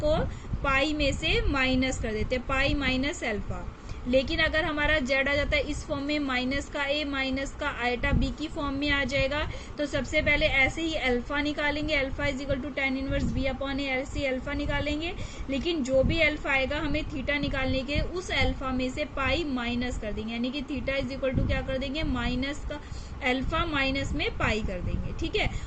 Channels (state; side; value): identical; both; correlation 1.00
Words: पाई में से माइनस कर देते हैं, पाई माइनस अल्फा। लेकिन अगर हमारा जेड आ जाता है इस फॉर्म में, माइनस का ए माइनस का आइटा बी की फॉर्म में आ जाएगा, तो सबसे पहले ऐसे ही अल्फा निकालेंगे, alpha is equal to tan inverse b upon a, ऐसे अल्फा निकालेंगे। लेकिन जो भी अल्फा आएगा हमें थीटा निकालने के, उस अल्फा में से पाई माइनस कर देंगे, यानी कि थीटा इज इक्वल टू क्या कर देंगे, माइनस का अल्फा माइनस में पाई कर देंगे। ठीक है,